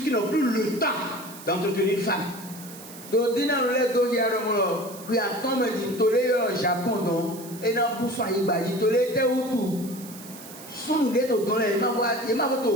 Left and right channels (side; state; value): right; noise; hiss, 16 dB below the sound